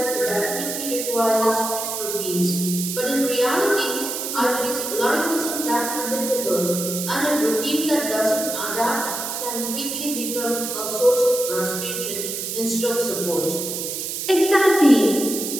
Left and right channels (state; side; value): noise; right; hiss, 4 dB below the sound